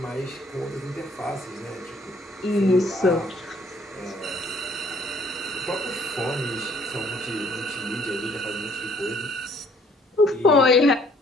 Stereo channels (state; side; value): normal; both; correlation 0.61